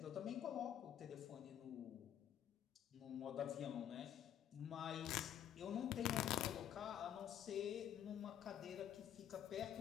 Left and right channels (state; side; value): quieter; right; 10.3 dB